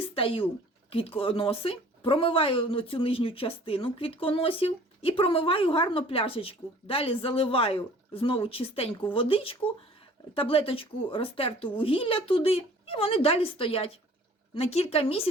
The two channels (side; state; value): both; normal; correlation 0.51